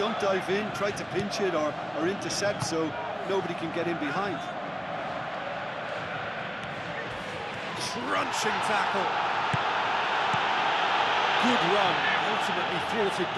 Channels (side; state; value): both; identical; correlation 1.00